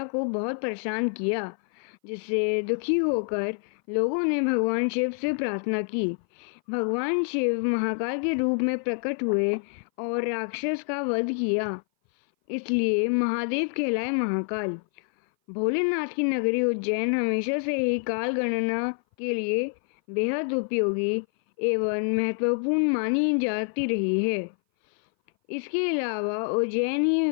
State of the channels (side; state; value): right; silent; 58 dB below the other